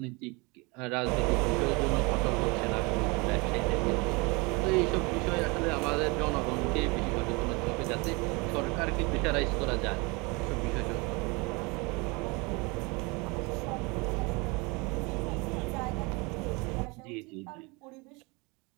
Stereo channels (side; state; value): left; quieter; 27.6 dB